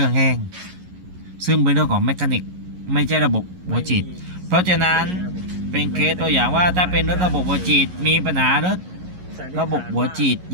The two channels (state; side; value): late; left; 11 ms